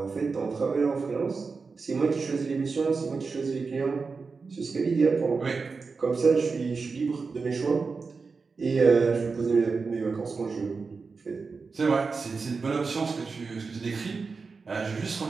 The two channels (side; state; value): left; quieter; 4.6 dB